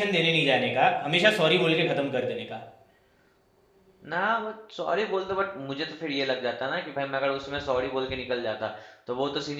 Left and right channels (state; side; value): identical; both; correlation 1.00